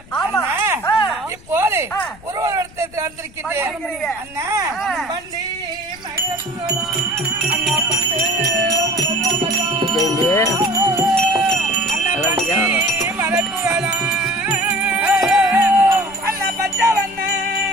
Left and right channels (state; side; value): noise; left; rumble, 22 dB below the sound